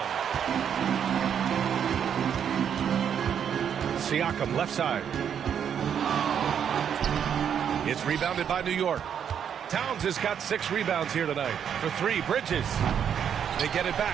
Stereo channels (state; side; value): quieter; left; 8.3 dB